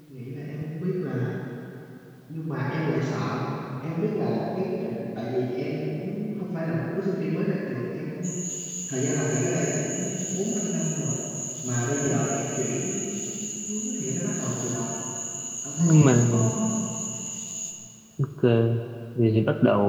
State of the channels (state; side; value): identical; both; correlation 1.00